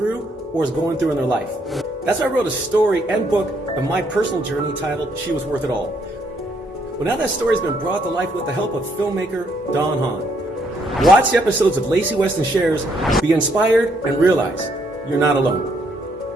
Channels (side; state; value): both; normal; correlation 0.71